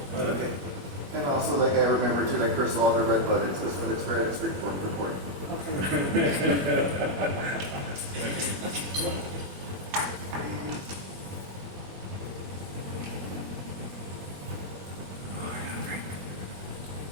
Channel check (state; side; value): late; left; 21 ms